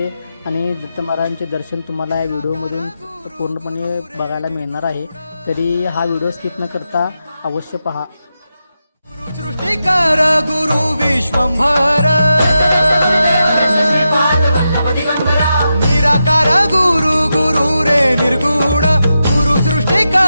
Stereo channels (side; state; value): both; inverted; correlation -0.88